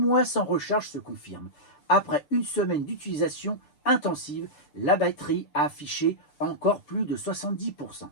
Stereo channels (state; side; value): late; right; 6.8 ms